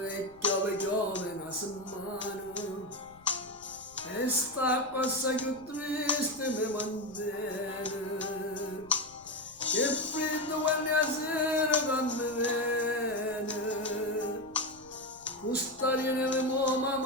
e piove una settimana e sta cosa più triste mi mantiene, che freddo quando la sera quando viene, questa viene mo ma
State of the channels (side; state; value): left; noise; rumble, 26 dB below the sound